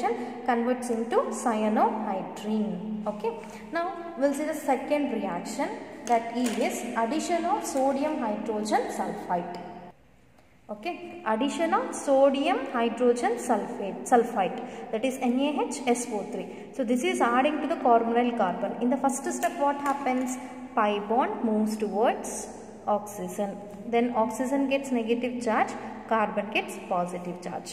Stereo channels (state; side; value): identical; both; correlation 1.00